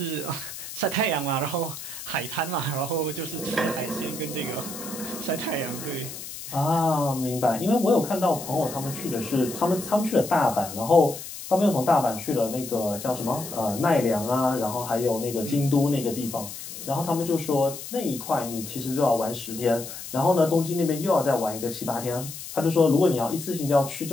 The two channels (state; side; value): noise; left; hiss, 11 dB below the sound